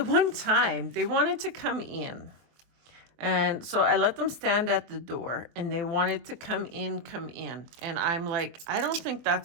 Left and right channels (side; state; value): left; late; 23 ms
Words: one time they wanted to come in, and so I let them stand at the door, and they wanted to come in. And I'm like, I don't think